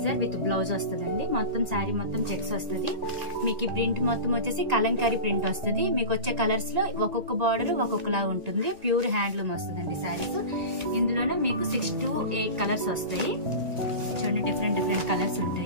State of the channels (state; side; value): late; left; 1.9 ms